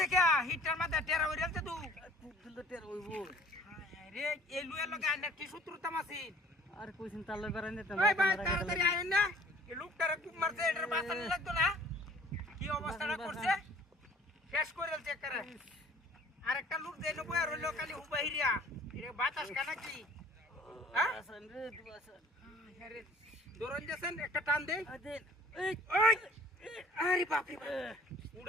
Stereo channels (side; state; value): both; normal; correlation 0.53